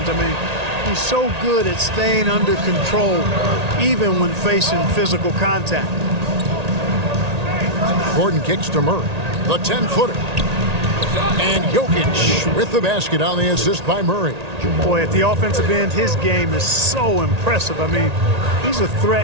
I mean, he's so good at staying under control even when facing physical contact. Gordon kicks to Murray. The 10-footer. And Jokic with the basket on the assist by Murray. Boy, at the offensive end, his game is so impressive. I mean, he's a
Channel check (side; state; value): left; late; 1.8 ms